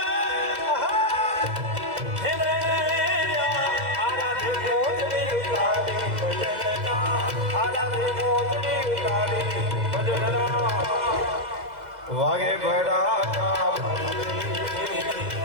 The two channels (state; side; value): late; left; 2.0 ms